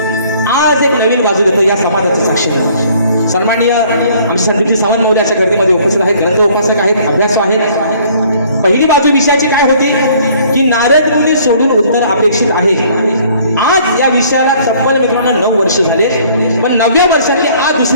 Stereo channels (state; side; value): inverted; both; correlation -0.58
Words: आज एक नवीन बाजू देतो या समाजाचं साक्षी आहे सन्माननीय आमचे संदीपजी सावंत मौली अशा गर्दीमध्ये उपस्थित आहेत ग्रंथ उपासक आहेत अभ्यासू आहेत पहिली बाजू विषयाची काय होती की नारद मुनी सोडून उत्तर अपेक्षित आहे आज या विषयाला तब्बल मित्रांनो 9 वर्ष झाले पण 9व्या वर्षातली आज